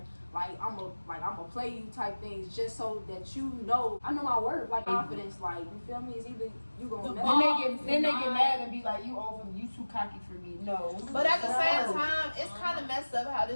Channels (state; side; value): inverted; both; correlation -1.00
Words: like I'ma play you type things just so that you know I know my worth, like confidence, like you feel me? It's either you gonna Then they get mad and be like, you too cocky for me. No. But at the same time, it's kind of messed up how